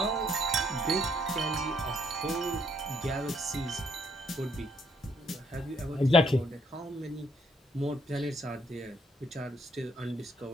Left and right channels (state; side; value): normal; both; correlation 0.69